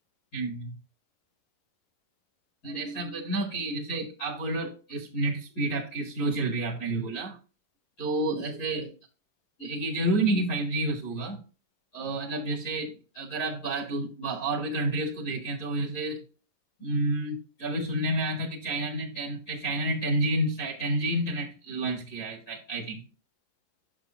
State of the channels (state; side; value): late; right; 11 ms